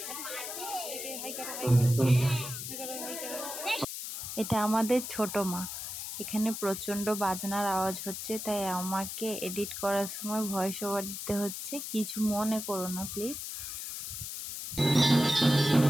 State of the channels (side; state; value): left; noise; hiss, 6 dB below the sound